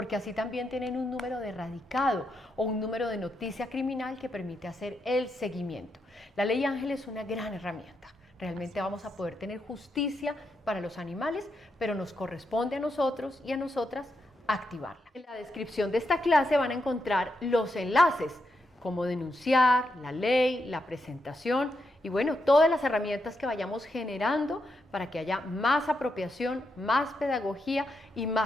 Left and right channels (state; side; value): normal; both; correlation 0.82